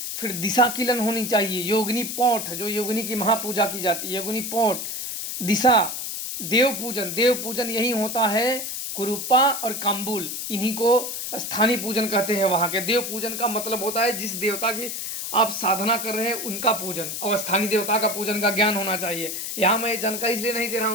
फिर दिशा किलन होनी चाहिए, योगिनी पोठ, जो योगिनी की महापूजा की जाती है, योगिनी पोठ, दिशा, देव पूजन यही होता है। कुरूपा और काम्बुल, इन्हीं को स्थानीय पूजन कहते हैं। वहाँ के देव पूजन का मतलब होता है जिस देवता की आप साधना कर रहे हैं उनका पूजन, और स्थानीय देवता का पूजन का ज्ञान होना चाहिए। यहाँ मैं जानकारी इसलिए नहीं दे रहा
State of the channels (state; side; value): noise; left; hiss, 5 dB below the sound